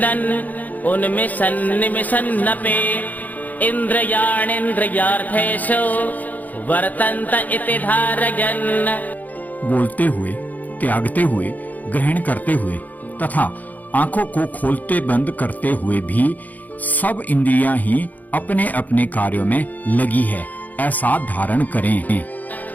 उन्मिषन् निमिषन्नपि इन्द्रियाणीन्द्रियार्थेषु वर्तन्त इति धारयन्। बोलते हुए, त्यागते हुए, ग्रहण करते हुए तथा आंखों को खोलते बंद करते हुए भी सब इंद्रियां ही अपने अपने कार्यों में लगी है, ऐसा धारण करें।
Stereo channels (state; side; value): late; right; 0.080 ms